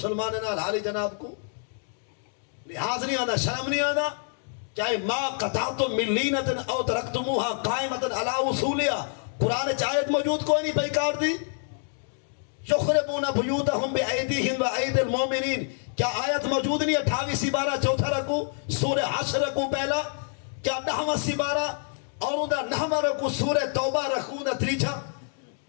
نال حالی جناب کو لحاظ نہیں آنا شرم نہیں آنا. چاہے ما قطعتم من لینتن او ترکتموها قائمتن علی اصولیا قرآن چاہت موجود کوئی نہیں بیکار دی. یخربون بیوتہم بأیدیہم وأید المومنین کیا آیت موجود نہیں 28 سپارہ چوتھا رکو سورہ حشر رکو پہلا کیا 9واں سپارہ اور اندھا 9واں رکو سورہ توبہ رکو اندھا تریچھا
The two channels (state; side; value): silent; right; 60 dB below the other